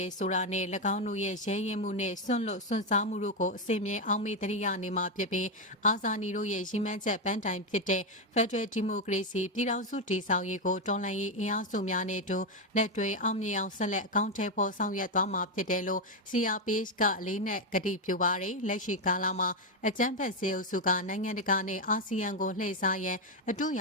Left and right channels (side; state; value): both; normal; correlation 0.06